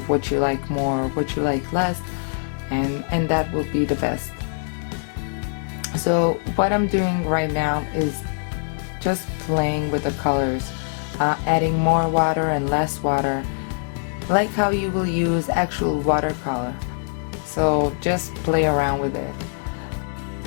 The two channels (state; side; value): silent; right; digital silence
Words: what you like more, what you like less, and that will be the best. So what I'm doing right now is just playing with the colors, adding more water and less water, like how you will use actual watercolor. So just play around with it.